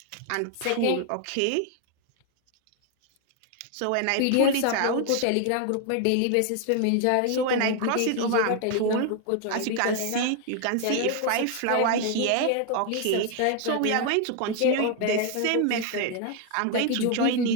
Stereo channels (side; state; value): both; different; correlation 0.00